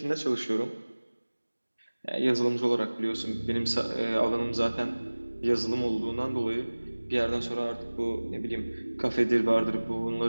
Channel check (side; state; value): both; inverted; correlation -1.00